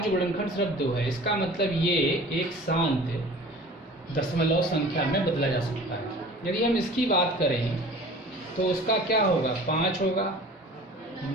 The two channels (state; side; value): normal; both; correlation 0.43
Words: गुणनखंड सिर्फ 2 है। इसका मतलब ये एक शांत दशमलव संख्या में बदला जा सकता है। यदि हम इसकी बात करें तो उसका क्या होगा, 5 होगा,